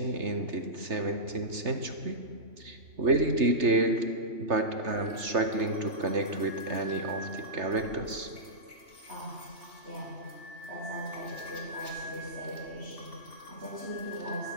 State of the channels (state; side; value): late; left; 3.3 ms